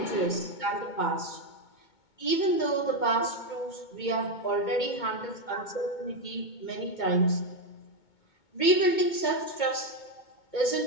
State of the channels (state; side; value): late; right; 2.2 ms